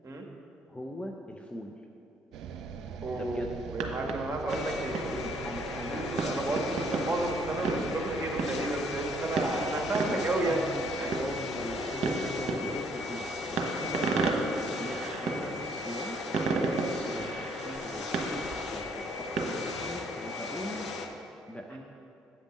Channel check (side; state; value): both; normal; correlation 0.65